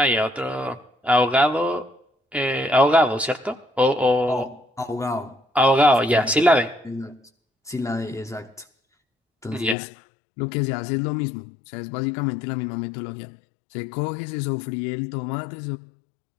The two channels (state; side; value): drops out; right; at 9.8 s